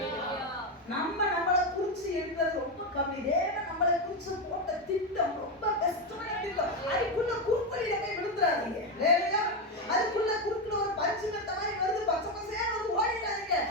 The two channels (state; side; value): normal; both; correlation 0.10